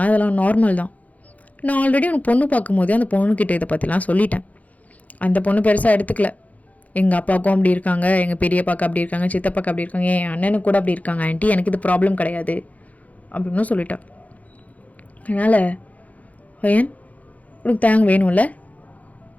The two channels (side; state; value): right; late; 0.073 ms